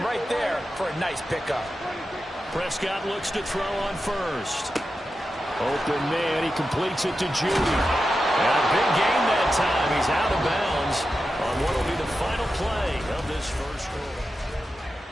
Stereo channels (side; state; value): both; normal; correlation 0.91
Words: right there for a nice pickup. Prescott looks to throw on first. Open man, he completes it to Judy. And a big gain that time. He's out of bounds on what will be the final play of this first quarter.